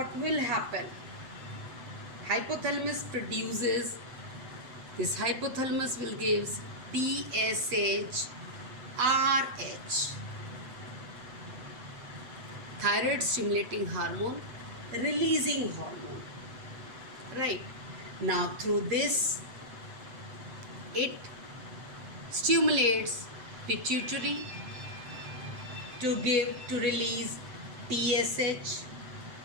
will happen? Hypothalamus will give TSH, RH, thyroid stimulating hormone, releasing hormone. Right. Now through this, it stimulates pituitary to release TSH,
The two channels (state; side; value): late; left; 7.8 ms